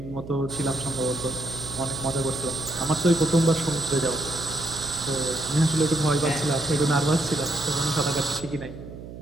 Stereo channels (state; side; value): noise; right; hum, 13 dB below the sound